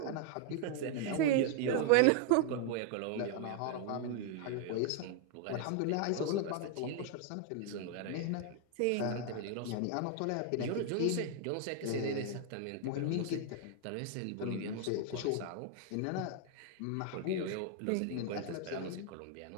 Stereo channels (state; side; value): different; both; correlation 0.00